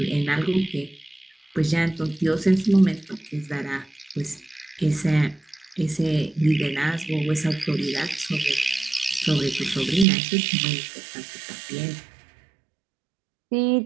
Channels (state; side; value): drops out; left; at 10.1 s